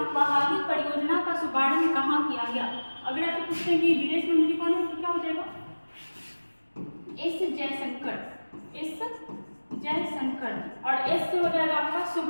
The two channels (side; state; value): both; inverted; correlation -1.00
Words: बहाली परियोजना का शुभारंभ कहाँ किया गया। अगर आप पूछते हैं कि विदेश मंत्री कौन है, तो क्या हो जाएगा, एस जयशंकर, एस जयशंकर, और एस से हो जाएगा आपका